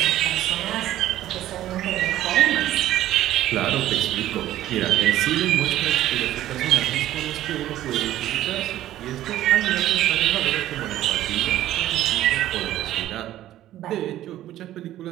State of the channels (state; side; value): quieter; left; 13.5 dB